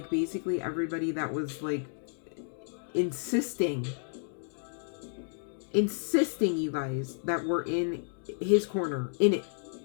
basically everybody that was like insisting, you guys, that were in his corner, in it,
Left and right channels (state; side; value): silent; right; digital silence